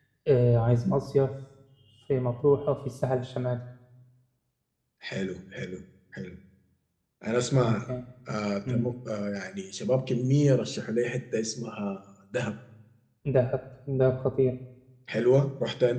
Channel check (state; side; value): identical; both; correlation 1.00